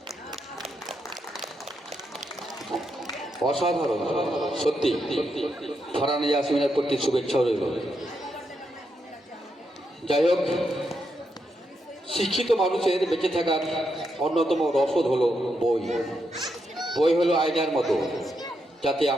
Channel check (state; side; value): normal; both; correlation 0.82